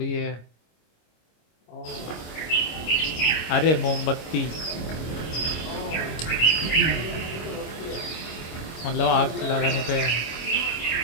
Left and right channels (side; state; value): right; late; 26 ms